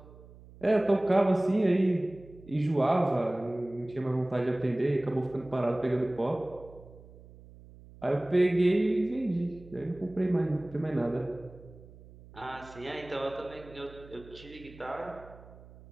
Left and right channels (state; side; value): noise; right; hum, 20 dB below the sound